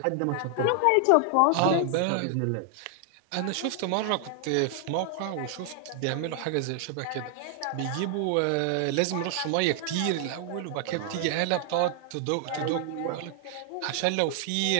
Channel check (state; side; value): different; both; correlation 0.00